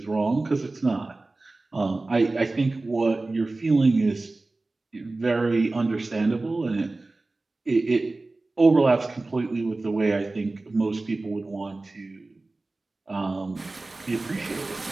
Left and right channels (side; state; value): left; quieter; 3.2 dB